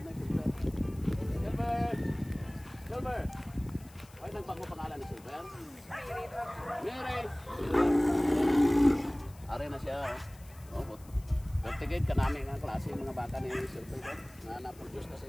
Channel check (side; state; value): left; noise; hiss, 24 dB below the sound